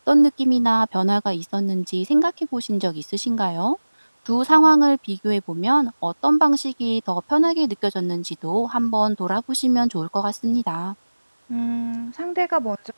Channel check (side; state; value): both; inverted; correlation -1.00